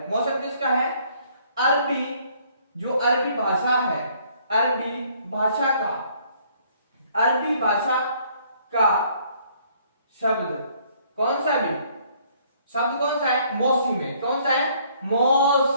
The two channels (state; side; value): inverted; both; correlation -0.63